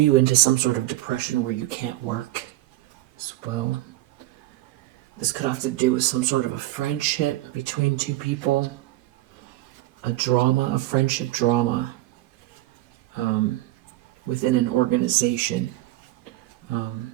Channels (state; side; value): quieter; left; 16.9 dB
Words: into some sort of depression where you can't work as well. This could have to do with some sort of a friendship between two people, a friendship drama within an organization.